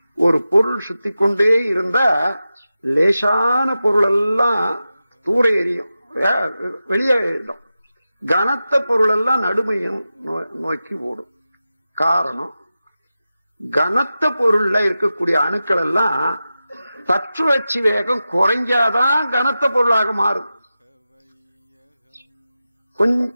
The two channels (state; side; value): inverted; both; correlation -0.93